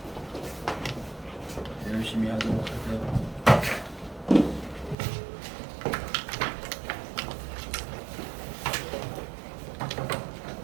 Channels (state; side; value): drops out; left; at 5.0 s